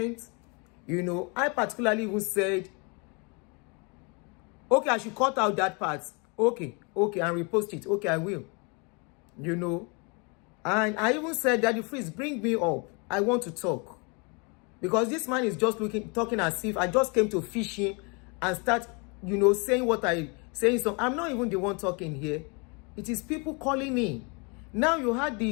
You know, I particularly even said, okay, I should cut out that part. Okay, and repost it. Okay, I will. You know, and I even said, Daddy Freeze, bring me up. I want to talk. Because this man is just talking as if I just came to fish him and start, you know, saying what saying. So I'm not even the one talking here. It is people calling in. Now you had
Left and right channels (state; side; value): quieter; right; 32.4 dB